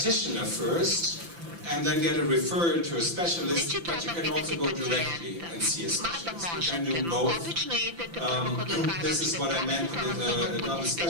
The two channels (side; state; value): left; late; 5.9 ms